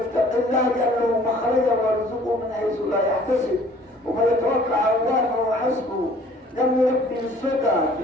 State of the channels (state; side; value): normal; both; correlation 0.54